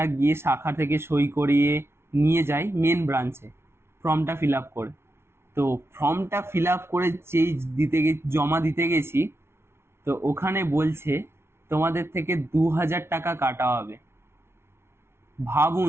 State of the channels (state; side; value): late; left; 0.12 ms